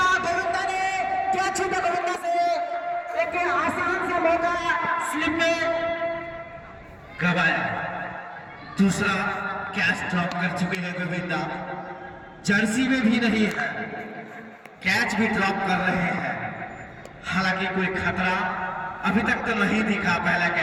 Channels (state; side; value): identical; both; correlation 1.00